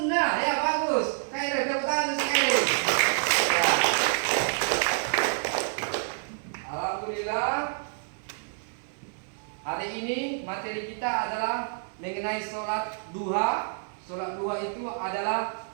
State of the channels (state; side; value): silent; left; 57 dB below the other